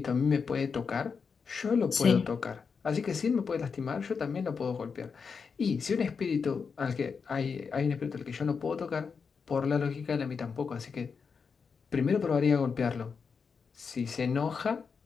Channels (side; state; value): right; quieter; 5.6 dB